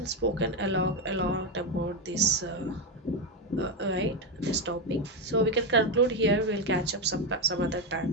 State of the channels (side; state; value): both; normal; correlation 0.09